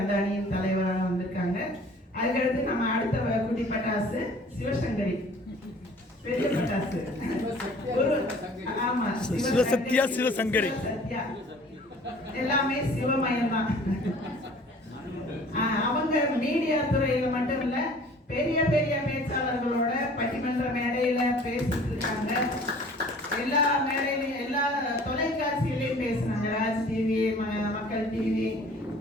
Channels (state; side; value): normal; both; correlation 0.50